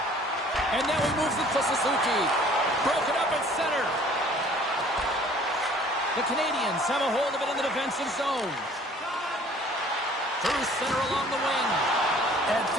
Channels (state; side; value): normal; both; correlation 0.53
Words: And now he moves it to Suzuki. Broken up at center. The Canadians have a hold of it in the defensive zone. Through center along the wing. And